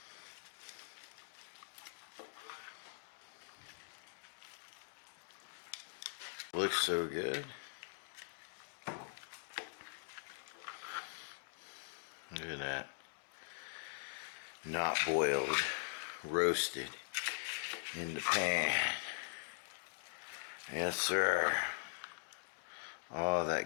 Looks so good. Look at that. Not boiled, roasted in the pan. Yes, sir. All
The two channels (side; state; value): right; silent; digital silence